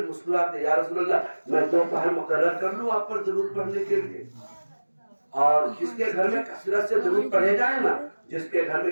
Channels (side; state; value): both; inverted; correlation -1.00